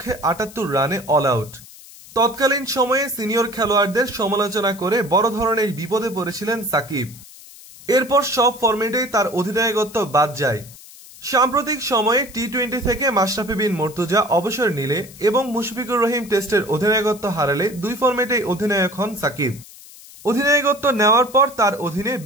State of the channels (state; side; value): noise; left; hiss, 19 dB below the sound